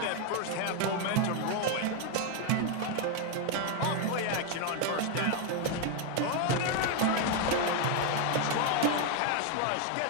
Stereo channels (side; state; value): both; different; correlation 0.01